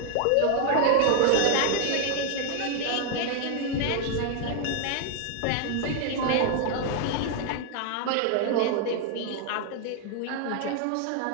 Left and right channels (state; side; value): different; both; correlation 0.00